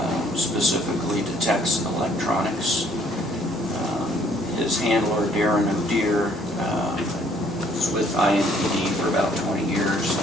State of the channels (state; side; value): normal; both; correlation 0.62